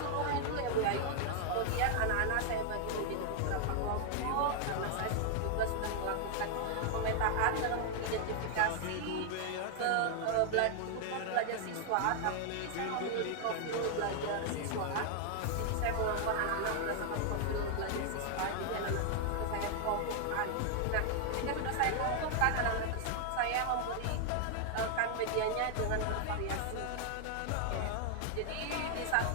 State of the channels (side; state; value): both; different; correlation 0.00